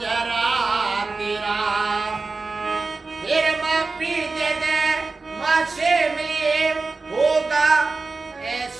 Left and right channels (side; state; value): left; quieter; 3.9 dB